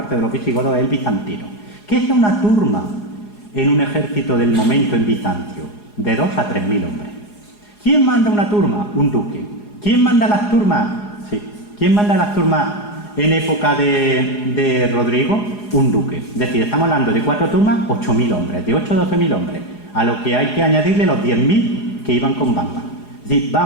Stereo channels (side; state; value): right; late; 4.8 ms